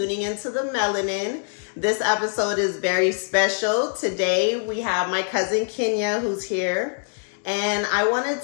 into The Melanin. This episode is very special. Today we have my cousin Kenya who's here, and I wanted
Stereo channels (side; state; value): right; silent; 63 dB below the other